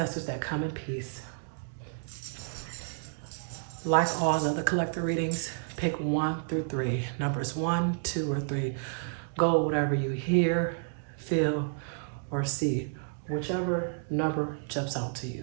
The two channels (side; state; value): left; silent; digital silence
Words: that come in peace. Like all the other collective readings, pick 1 through 3. Numbers 1, 2, or 3. Go whatever you hear, feel, or see. Whichever number jumps out to you,